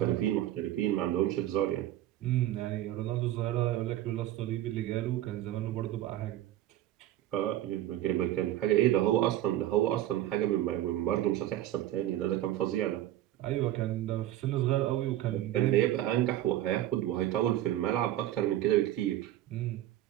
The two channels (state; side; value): quieter; left; 13.6 dB